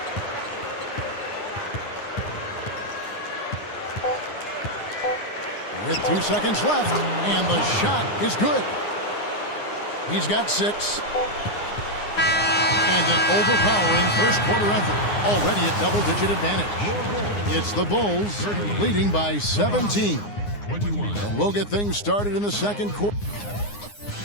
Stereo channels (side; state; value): right; late; 9.7 ms